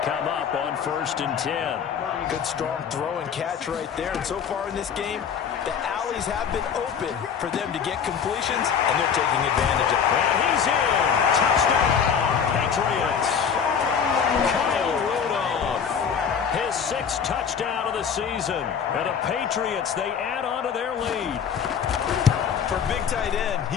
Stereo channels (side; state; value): right; quieter; 7.2 dB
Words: come up on 1st and 10. Good strong throw and catch right there. And so far in this game, the alleys have been open for them to get completions, and they're taking advantage of it. And he's in. Touchdown, Patriots. Kyle Rudolph, his 6th touchdown of the season. And the Patriots, they add on to their lead. For a big tight end,